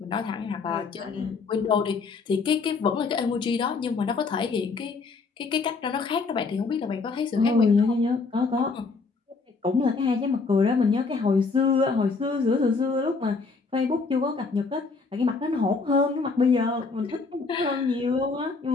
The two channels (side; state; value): right; quieter; 4.4 dB